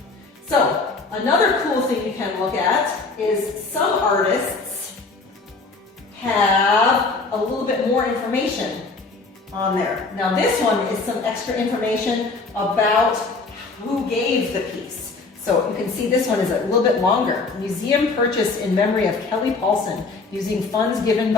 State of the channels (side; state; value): right; quieter; 3.8 dB